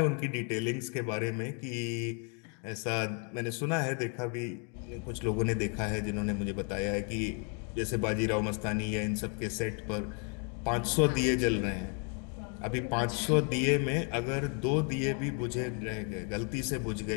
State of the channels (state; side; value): quieter; right; 39.0 dB